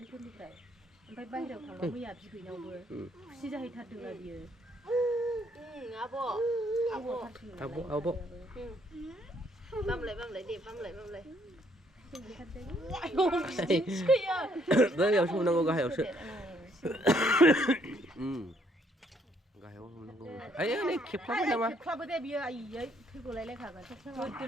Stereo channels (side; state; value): both; normal; correlation 0.68